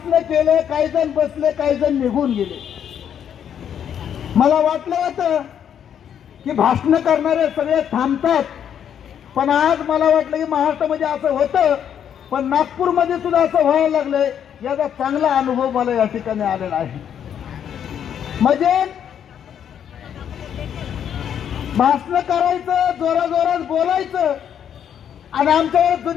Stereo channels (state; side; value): quieter; right; 9.0 dB